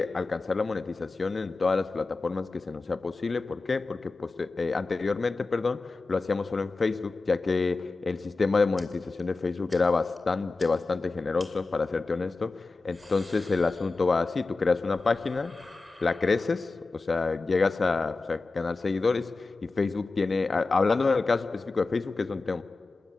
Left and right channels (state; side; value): quieter; right; 3.7 dB